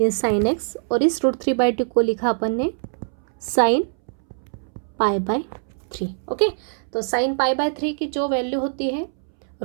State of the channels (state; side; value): silent; left; 63 dB below the other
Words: साइन x, और इस √3/2 को लिखा अपन ने साइन π/3। ओके, तो साइन π/3 की जो वैल्यू होती है